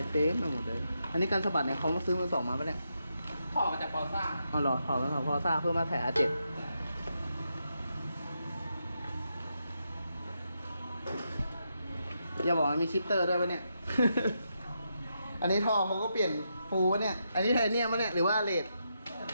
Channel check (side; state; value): both; inverted; correlation -0.83